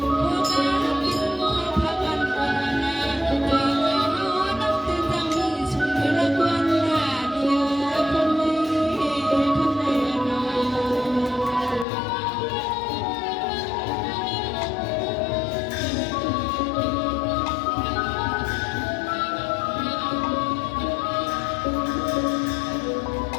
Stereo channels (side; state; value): right; drops out; at 11.9 s